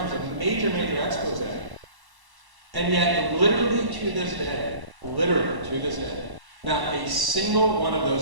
a major expose. And yet, literally to this day, not a single one of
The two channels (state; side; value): late; left; 1.0 ms